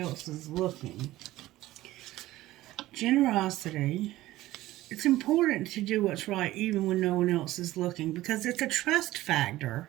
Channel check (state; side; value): quieter; left; 16.4 dB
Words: is looking. Generosity. it's important to do what's right even when no one else is looking because it's a trust factor.